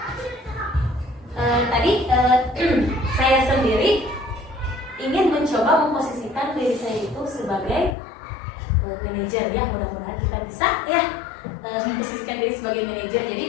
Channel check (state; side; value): drops out; right; at 8.0 s